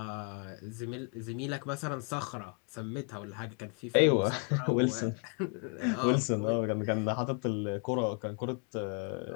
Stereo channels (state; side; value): quieter; right; 38.8 dB